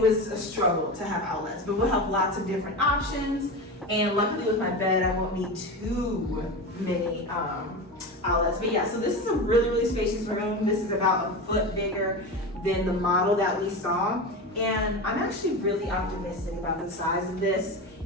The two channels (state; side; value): normal; both; correlation 0.24